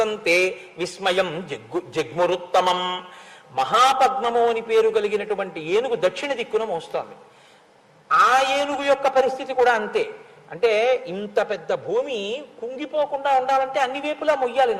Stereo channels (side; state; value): both; identical; correlation 1.00